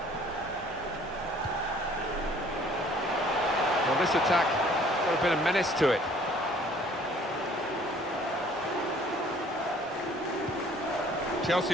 Well, this attack got a bit of menace to it. Chelsea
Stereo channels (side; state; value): both; normal; correlation 0.56